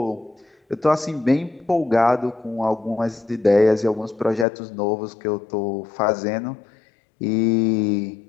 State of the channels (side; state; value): right; drops out; at 4.5 s